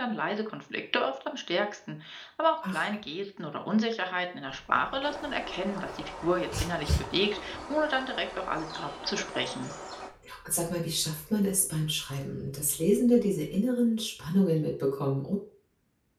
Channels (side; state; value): both; identical; correlation 1.00